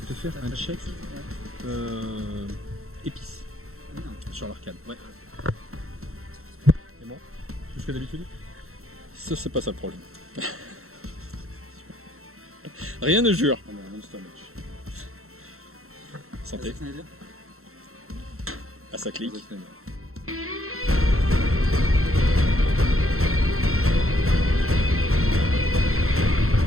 te faire un check épices sur l'arcade. Ouais. Et bon, plus que d'habitude. Ça, c'est pas ça le problème. Rien ne jure. Ah non, Monster Match. Santé. Ah, ça clique.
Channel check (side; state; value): left; late; 0.63 ms